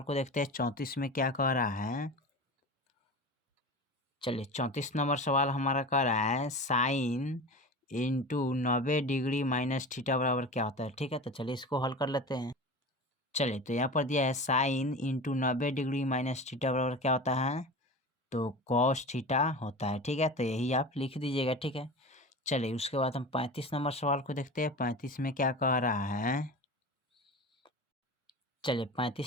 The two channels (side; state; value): both; normal; correlation 0.32